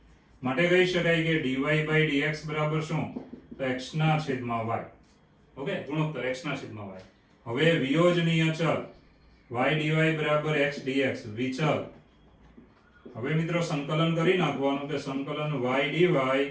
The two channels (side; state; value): both; identical; correlation 1.00